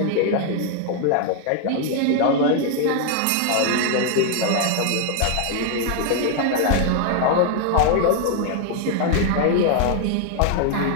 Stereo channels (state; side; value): different; both; correlation 0.00